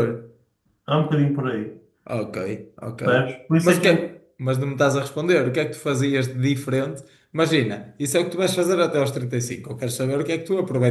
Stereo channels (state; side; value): identical; both; correlation 1.00